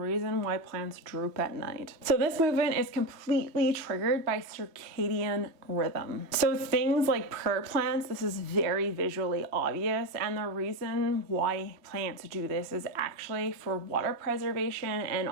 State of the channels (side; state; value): left; late; 3.0 ms